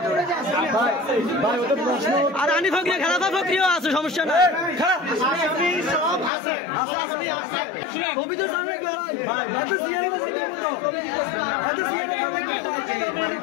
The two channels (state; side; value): drops out; right; at 6.3 s